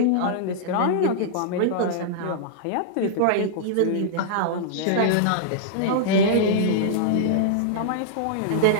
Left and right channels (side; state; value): both; different; correlation -0.02